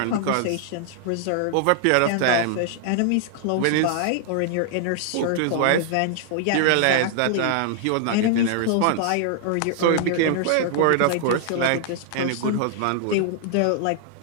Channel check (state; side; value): different; both; correlation -0.01